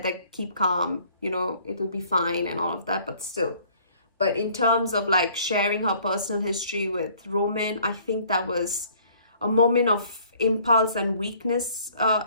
that keep calm, it'll be fine and all of that, but still. But in terms of sharing her personal history with Roman, I think that was a moment of impulse and weakness.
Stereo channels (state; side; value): inverted; both; correlation -0.58